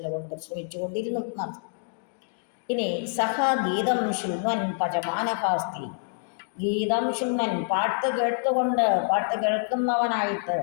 പരിശ്രമിച്ചുകൊണ്ടിരുന്നു എന്നർത്ഥം. ഇനി സഹ ഗീതം ശൃണ്വൻ പചമാനഹാസ്തി. ഗീതം ശൃണ്വൻ, പാട്ട് കേൾക്കുന്നവനായിട്ട്,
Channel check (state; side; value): silent; right; digital silence